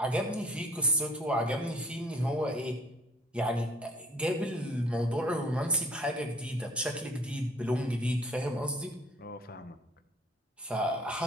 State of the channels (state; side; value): normal; both; correlation 0.55